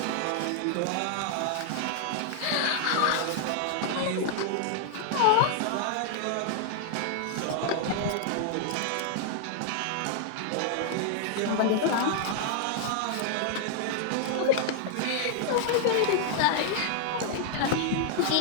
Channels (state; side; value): different; both; correlation 0.00